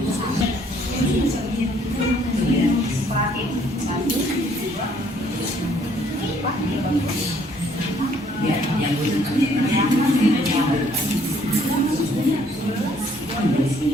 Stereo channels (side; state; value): both; normal; correlation 0.64